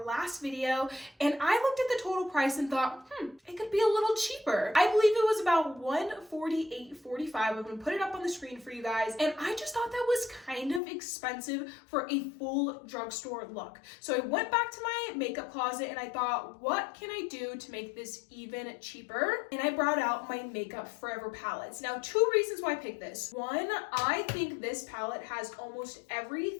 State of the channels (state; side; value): drops out; right; at 10.8 s